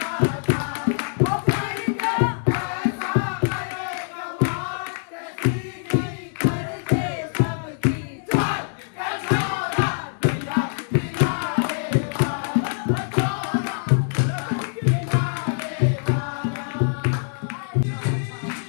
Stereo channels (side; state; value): right; silent; 62 dB below the other